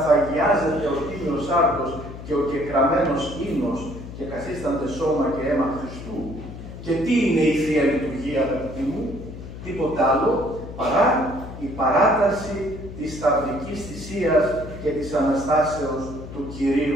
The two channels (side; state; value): left; noise; hum, 12 dB below the sound